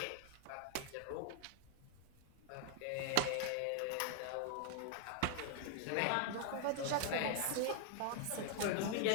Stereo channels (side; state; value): both; different; correlation 0.00